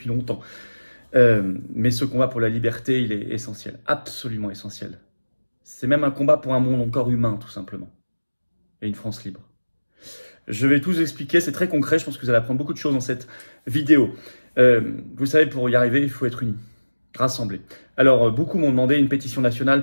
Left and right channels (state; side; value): inverted; both; correlation -1.00